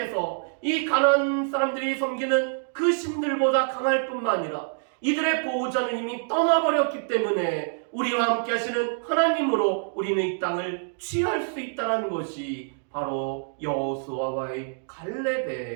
이 가나안 사람들이 섬기는 그 신들보다 강할 뿐만 아니라 이들의 보호자는 이미 떠나버렸기 때문에 우리와 함께 하시는 하나님으로 우리는 이 땅을 취할 수 있다는 것이 바로 여호수아와의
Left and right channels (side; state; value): left; silent; digital silence